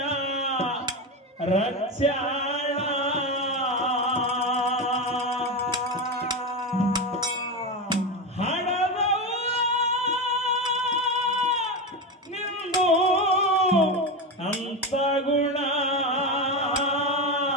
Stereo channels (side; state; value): both; normal; correlation 0.17